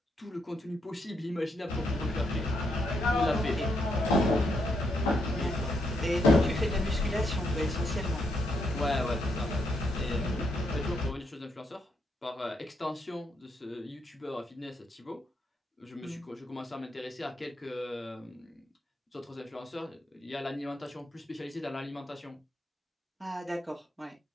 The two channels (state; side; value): normal; both; correlation 0.78